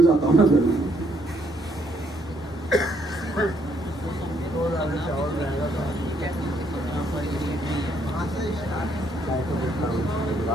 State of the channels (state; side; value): normal; both; correlation 0.70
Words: जाता हूं ना फिर मैं।